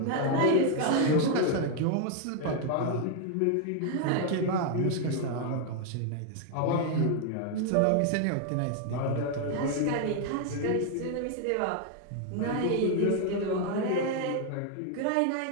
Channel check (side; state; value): both; different; correlation 0.00